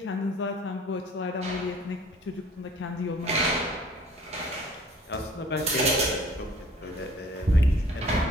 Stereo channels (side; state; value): both; normal; correlation 0.52